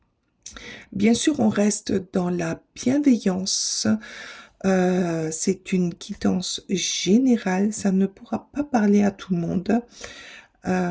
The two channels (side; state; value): both; identical; correlation 1.00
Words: Bien sûr, on reste dans la bienveillance. C'est une guidance générale. Ça ne pourra pas parler à tout le monde.